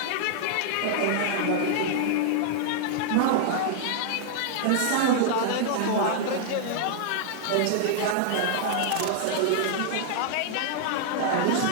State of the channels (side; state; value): both; different; correlation -0.01